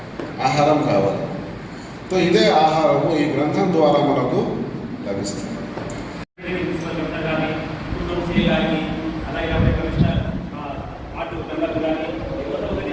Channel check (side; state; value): both; identical; correlation 1.00